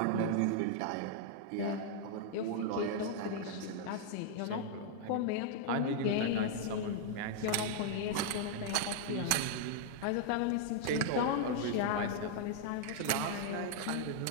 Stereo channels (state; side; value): different; both; correlation -0.01